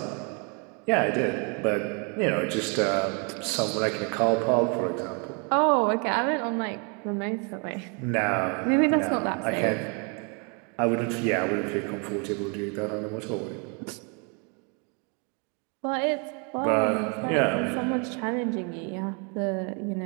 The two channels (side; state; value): left; quieter; 35.2 dB